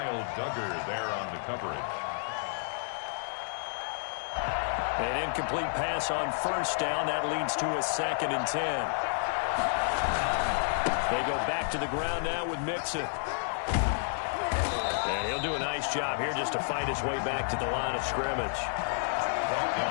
Duggar there on the coverage. An incomplete pass on first down. That leads to a 2nd and 10. They go back to the ground now with Mixon. And he'll do a nice job here just to fight his way back to the line of scrimmage.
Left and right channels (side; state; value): right; silent; digital silence